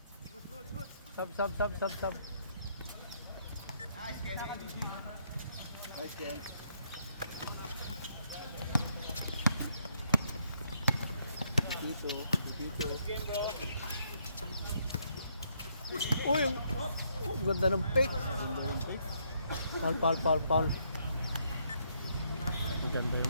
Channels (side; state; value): both; inverted; correlation -0.73